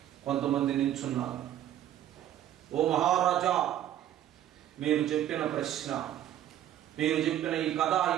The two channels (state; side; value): quieter; left; 11.8 dB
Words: కొంతమంది నించున్నారు. ఓ మహారాజా, మీరు చెప్పిన ప్రశ్న, మీరు చెప్పిన ఈ కథ,